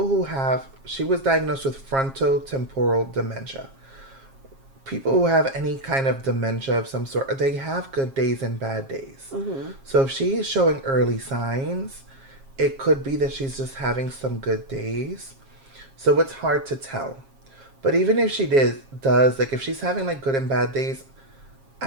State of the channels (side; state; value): left; late; 7.4 ms